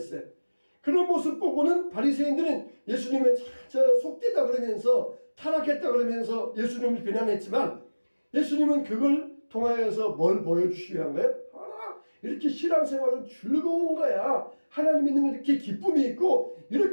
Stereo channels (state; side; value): inverted; both; correlation -1.00